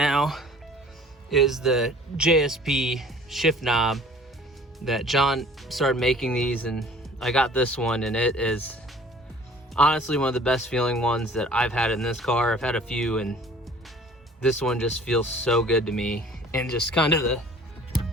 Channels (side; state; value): both; normal; correlation 0.50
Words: is the JSP shift knob that John started making these, and I got this one, and it is honestly one of the best feeling ones that I've had in this car. I've had a few, and this one just feels so good to me, and just kind of the